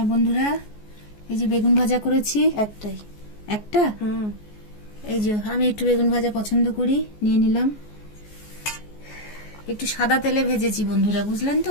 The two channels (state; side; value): late; right; 14 ms